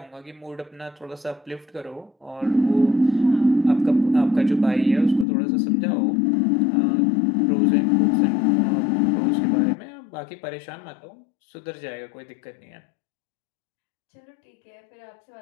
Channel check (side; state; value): right; drops out; at 5.2 s